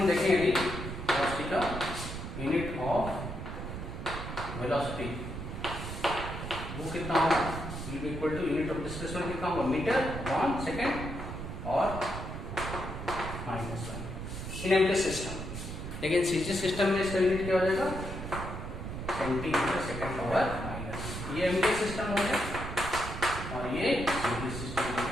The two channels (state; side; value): noise; right; rumble, 7 dB below the sound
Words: देखेंगे अभी वेलोसिटी का, यूनिट ऑफ वेलोसिटी वो कितना होगा, will be equal to unit of displacement कितना होगा, मीटर अपॉन सेकेंड और -1 इन एमटी सिस्टम। लेकिन सीजी सिस्टम में इसका यूनिट क्या हो जाएगा, सेंटीमीटर सेकेंड पावर माइनस। ये एमटी सिस्टम हो गया और ये सीजी सिस्टम,